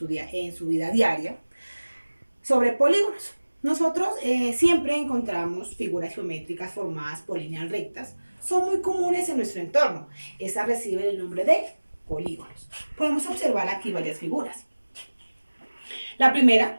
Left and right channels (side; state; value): both; inverted; correlation -1.00